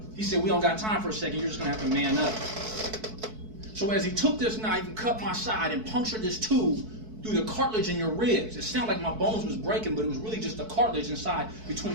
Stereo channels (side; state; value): left; late; 4.6 ms